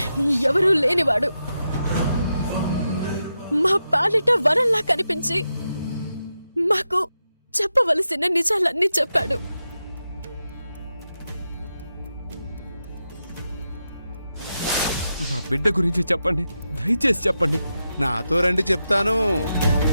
ఎవరూ లేనివాడు. మా పాలిట వరంలా కనిపించి మాకు చెప్పవలసిన నిజాలన్నీ చెప్పాడు. మా బిడ్డ గురించి చెప్పండి, దయచేసి చెప్పండి. నాతో రండి, చెప్తాను.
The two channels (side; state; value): both; inverted; correlation -0.88